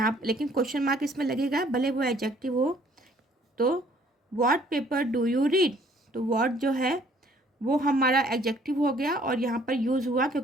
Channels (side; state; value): both; normal; correlation 0.60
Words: लेकिन क्वेश्चन मार्क इसमें लगेगा भले वो एडजेक्टिव हो। तो what paper do you read, तो what जो है वो हमारा एडजेक्टिव हो गया और यहाँ पर यूज़ हुआ